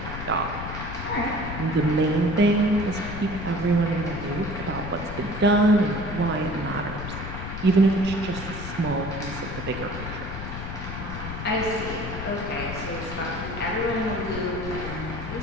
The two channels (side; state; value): left; noise; rumble, 7 dB below the sound